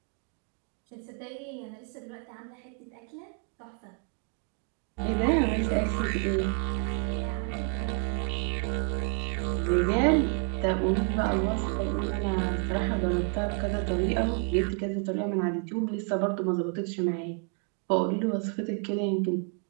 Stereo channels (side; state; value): left; quieter; 35.9 dB